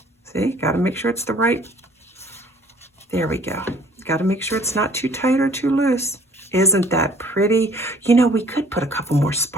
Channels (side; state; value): both; normal; correlation 0.55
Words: See, got to make sure it's the right. There we go. Got to make sure it's not too tight or too loose. Isn't that pretty? You know, we could put a couple more